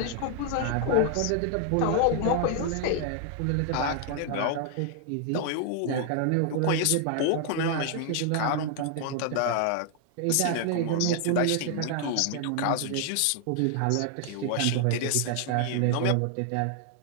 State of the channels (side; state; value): both; different; correlation 0.00